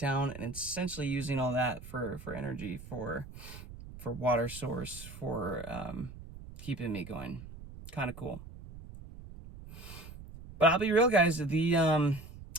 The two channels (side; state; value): right; noise; rumble, 14 dB below the sound